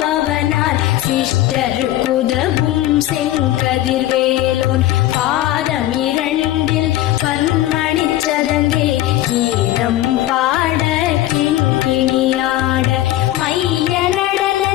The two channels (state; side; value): quieter; right; 14.6 dB